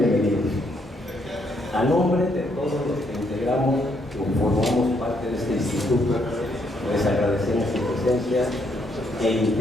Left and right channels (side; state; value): both; normal; correlation 0.73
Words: A nombre de todos los que integramos y formamos parte de este instituto, les agradecemos su presencia e